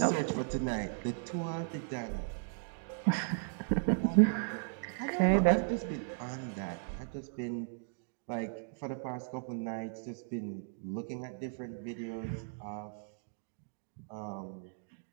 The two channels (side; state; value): left; silent; digital silence